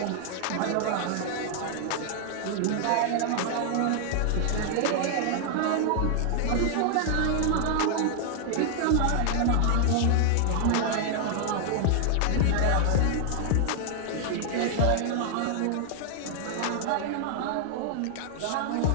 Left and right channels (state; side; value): different; both; correlation 0.00